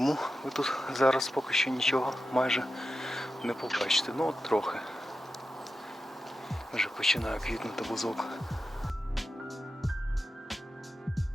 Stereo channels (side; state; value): both; normal; correlation 0.91